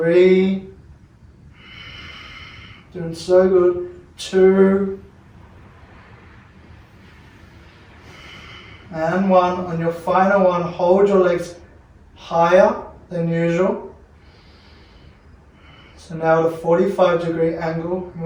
doing so good. 2, and 1. On your final one, hold your legs higher than usual. So now at a 45-degree angle,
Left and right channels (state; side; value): identical; both; correlation 1.00